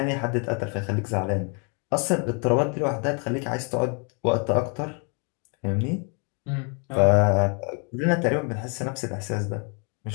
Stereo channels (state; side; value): quieter; right; 37.0 dB